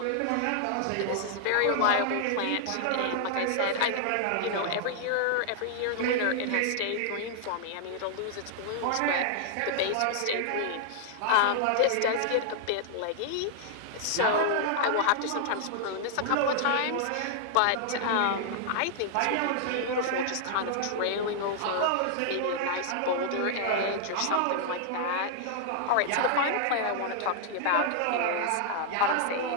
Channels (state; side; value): different; both; correlation -0.01